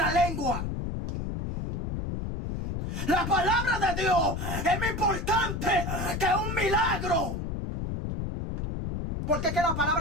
lengua. La palabra de Dios es más importante que un milagro. Porque es que la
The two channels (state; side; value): noise; left; rumble, 3 dB below the sound